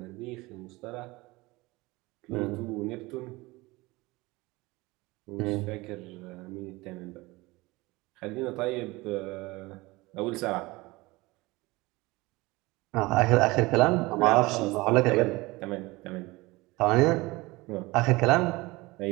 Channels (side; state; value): left; quieter; 22.0 dB